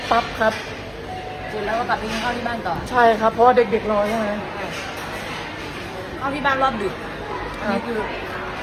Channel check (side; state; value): both; identical; correlation 1.00